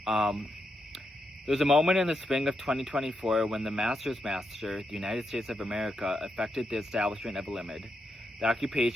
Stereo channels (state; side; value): normal; both; correlation 0.83